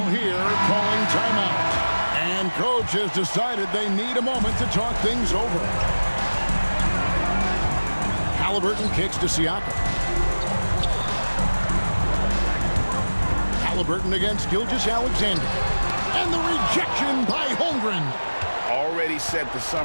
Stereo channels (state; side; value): inverted; both; correlation -1.00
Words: here calling timeout. And coach has decided they need a moment to talk things over. Halliburton kicks to Siakam. Halliburton against Gilgeous-Alexander. And the rejection by Holmgren. already set the